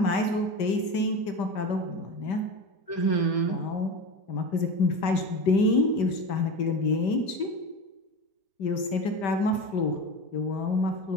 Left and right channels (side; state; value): right; late; 5.1 ms